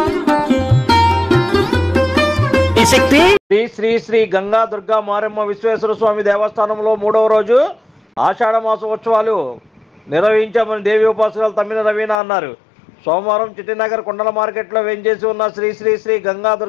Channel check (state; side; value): drops out; right; at 12.2 s